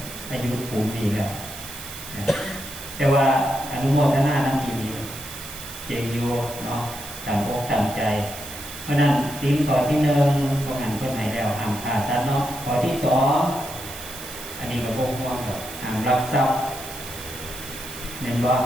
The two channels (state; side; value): noise; right; hiss, 12 dB below the sound